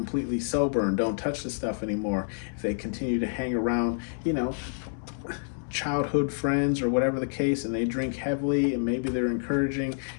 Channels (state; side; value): silent; right; 59 dB below the other